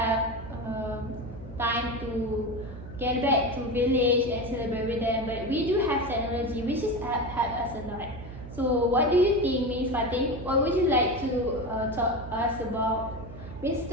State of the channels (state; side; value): noise; right; hum, 13 dB below the sound